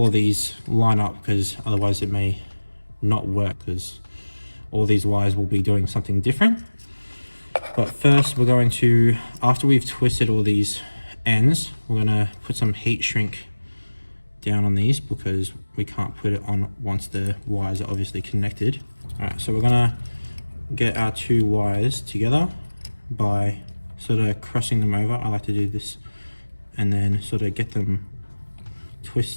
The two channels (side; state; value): both; inverted; correlation -1.00